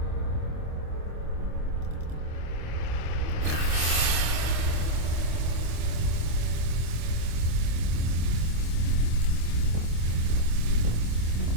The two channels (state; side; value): late; left; 25 ms